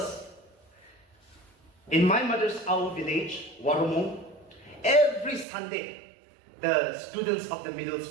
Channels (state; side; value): drops out; left; at 5.5 s